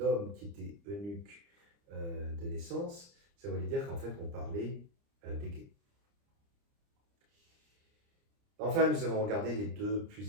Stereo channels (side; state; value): left; late; 29 ms